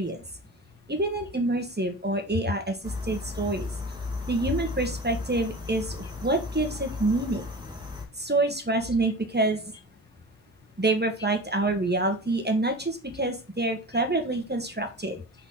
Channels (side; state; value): both; normal; correlation 0.34